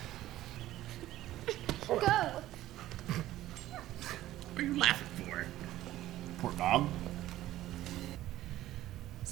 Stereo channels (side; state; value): left; quieter; 14.6 dB